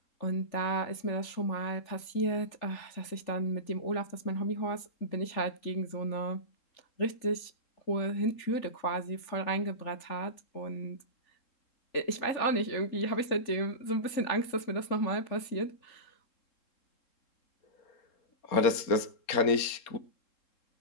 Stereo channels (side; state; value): right; late; 3.7 ms